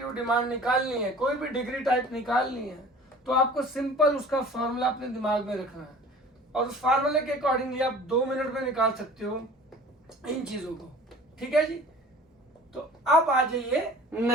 डिमांड निकालनी है, कोई भी डिग्री टाइप निकालनी है, तो आपको सिंपल उसका फॉर्मूला अपने दिमाग में रखना है और उस फार्मूले के अकॉर्डिंगली आप 2 मिनट में निकाल सकते हो इन चीजों को। ठीक है जी, तो अब आ जाइए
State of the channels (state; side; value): normal; both; correlation 0.45